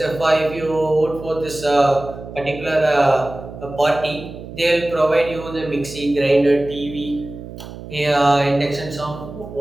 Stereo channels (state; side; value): noise; right; hum, 13 dB below the sound